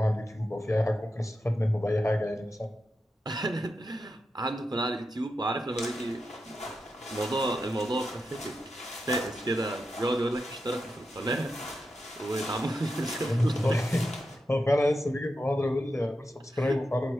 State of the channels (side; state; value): both; normal; correlation 0.88